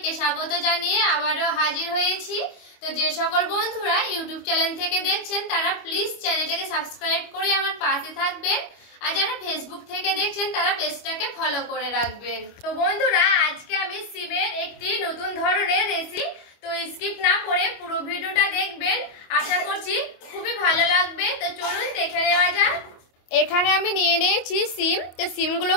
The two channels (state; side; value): late; right; 25 ms